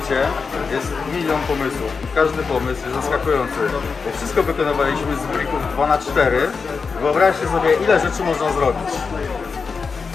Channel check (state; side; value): quieter; right; 5.1 dB